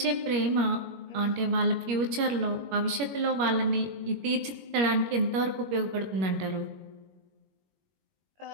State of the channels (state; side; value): late; left; 21 ms